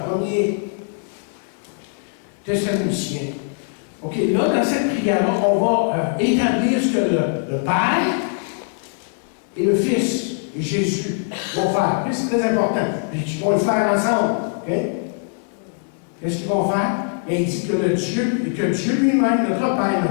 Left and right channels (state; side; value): silent; right; 65 dB below the other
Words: 1er Thessaloniciens, OK, là, dans cette prière-là, on va établir ce que le Père et le Fils et Jésus vont faire. C'est très important. Puis ils vont le faire ensemble. OK? Qu'est-ce qu'ils vont faire? Et il dit que Dieu lui-même, notre Père,